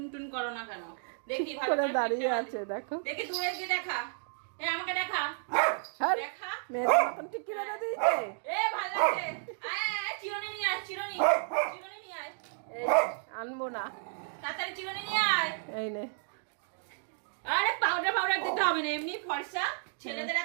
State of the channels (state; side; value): silent; left; digital silence